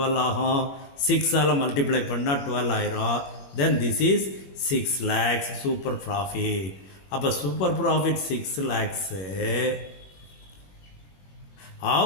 ஆகும், 6ஆல் மல்டிப்ளை பண்ணால் 12 ஆயிரும். Then this is 6 lakhs super profit. அப்போ super profit 6 lakhs.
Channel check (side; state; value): right; late; 21 ms